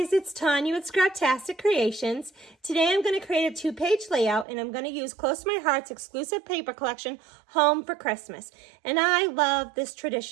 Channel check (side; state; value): left; drops out; at 4.5 s